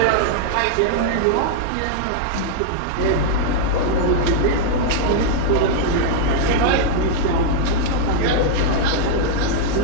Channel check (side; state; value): both; different; correlation -0.01